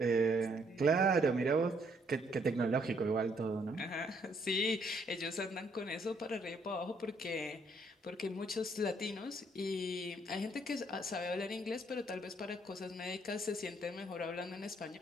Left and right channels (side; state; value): both; normal; correlation 0.68